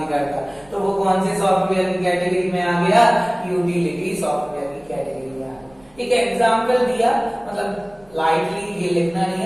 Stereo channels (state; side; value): noise; right; rumble, 29 dB below the sound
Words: करता। तो वो कौन से सॉफ्टवेयर की कैटेगरी में आ गया, यूटिलिटी सॉफ्टवेयर की कैटेगरी में आ गया। एक एग्जाम्पल दिया, मतलब लाइटली ये लिखना नहीं